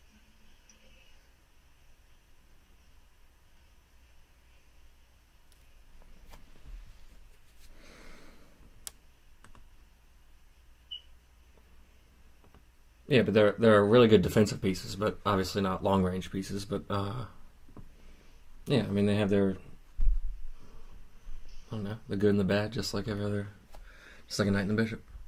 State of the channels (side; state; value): both; identical; correlation 1.00